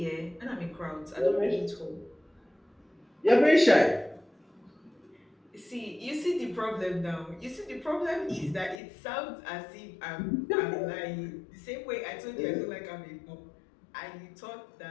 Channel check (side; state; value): right; drops out; at 8.8 s